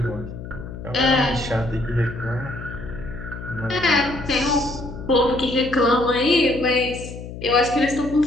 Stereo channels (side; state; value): left; noise; hum, 11 dB below the sound